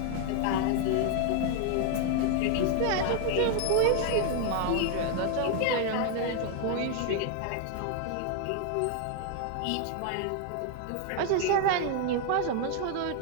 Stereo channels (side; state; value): both; different; correlation 0.00